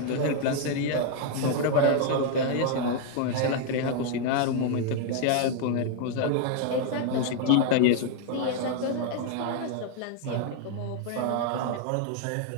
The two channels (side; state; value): both; different; correlation 0.00